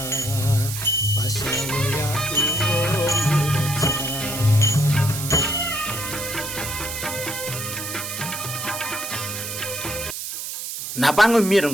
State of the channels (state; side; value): noise; right; hiss, 6 dB below the sound